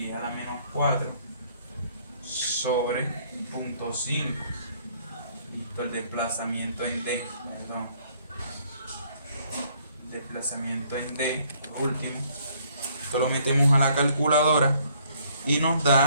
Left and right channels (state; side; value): inverted; both; correlation -0.65